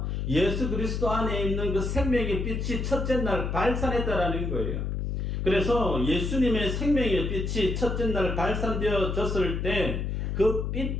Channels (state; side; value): noise; left; hum, 2 dB below the sound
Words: 예수 그리스도 안에 있는 그 생명의 빛이 첫째 날 발산했다라는 거예요. 그래서 예수님의 생명의 빛이 첫째 날 발산되어졌을 때 그 빛